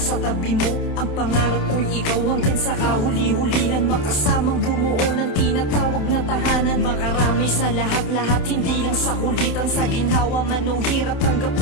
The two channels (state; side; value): late; right; 28 ms